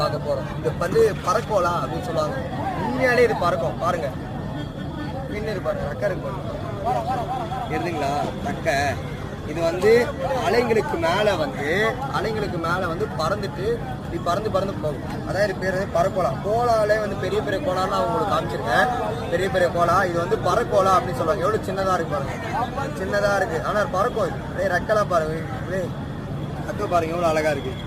பார்க்க போகிறோம். இது வந்து பறக்கோலா அப்படின்னு சொல்லுவாங்க. உண்மையாலே இது பறக்கும். பாருங்க, மீன் இருப்பாரு, ரக்கை இருக்கு இருந்துங்களா ரக்கை. இது வந்து அலைங்களுக்கு மேலே வந்து பறந்துட்டு இப்படி பறந்து போகும். அதான் இது பேர் பறக்கோலா. கோலாலே வந்து பெரிய பெரிய கோலான்னு நான் உங்களுக்கு காமிச்சிருக்கேன். பெரிய பெரிய கோலா இது வந்து பறக்கோலா அப்படின்னு சொல்லுவாங்க. எவ்வளோ சின்னதாக இருக்கு பாருங்க, சின்னதாக இருக்குது. ஆனால் பறக்கும். இது அப்படியே ரெக்கெல்லாம் பாருங்க, அப்படியே ரக்கை பாருங்க எவ்வளோ அழகாக இருக்குது.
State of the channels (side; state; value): both; identical; correlation 1.00